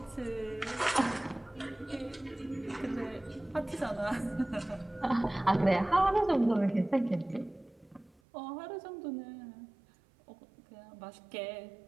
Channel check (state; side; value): drops out; left; at 8.1 s